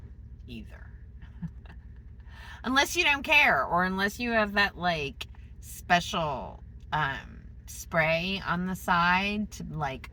either. Unless you don't care, or unless you have that like special spray on the side to like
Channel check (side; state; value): both; identical; correlation 1.00